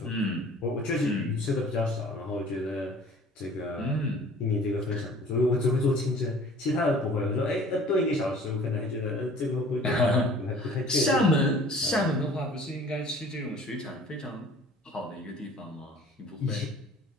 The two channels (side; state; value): both; normal; correlation 0.48